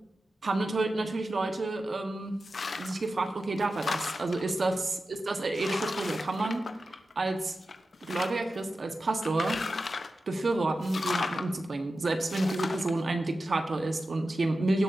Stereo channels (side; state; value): both; normal; correlation 0.92